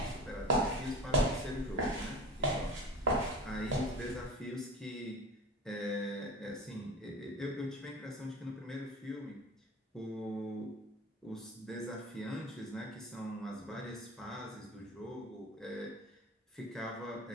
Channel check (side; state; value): both; normal; correlation 0.34